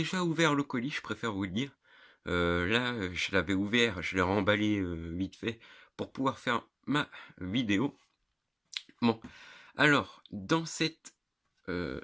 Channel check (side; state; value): both; identical; correlation 1.00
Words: ouvert le colis, je préfère vous le dire. Là, je l'avais ouvert, je l'ai remballé vite fait pour pouvoir faire ma vidéo. Bon, alors, dans